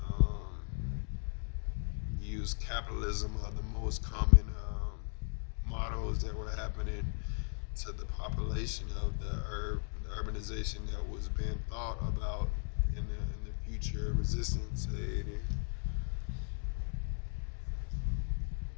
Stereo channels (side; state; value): right; silent; 53 dB below the other